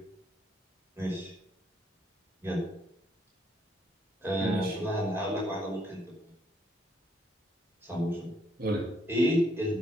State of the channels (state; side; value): normal; both; correlation 0.71